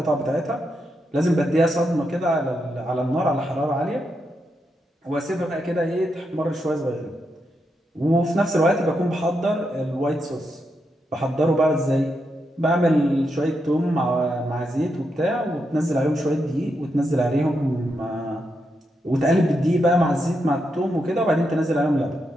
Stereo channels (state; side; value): normal; both; correlation 0.84